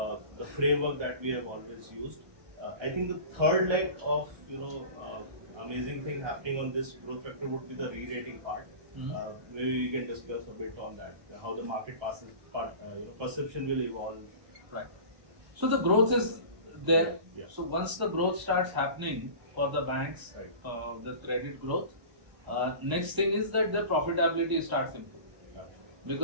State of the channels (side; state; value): left; late; 1.0 ms